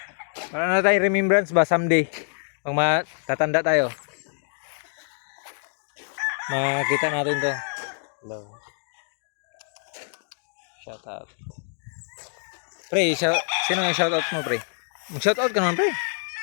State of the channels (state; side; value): silent; right; 61 dB below the other